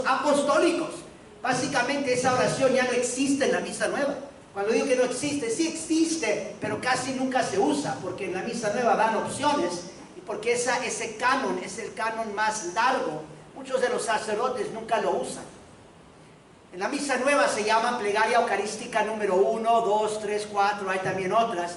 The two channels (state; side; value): identical; both; correlation 1.00